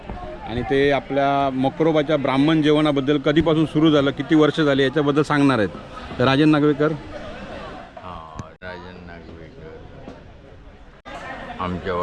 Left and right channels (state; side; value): identical; both; correlation 1.00